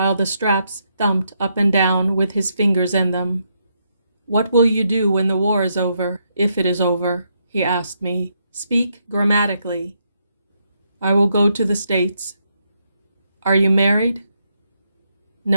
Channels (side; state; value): both; inverted; correlation -0.78